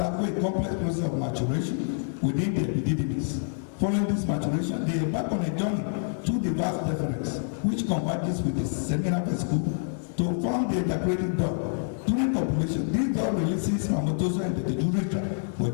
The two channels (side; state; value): right; silent; digital silence